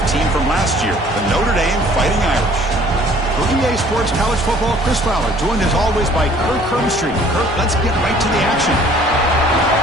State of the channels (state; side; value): normal; both; correlation 0.55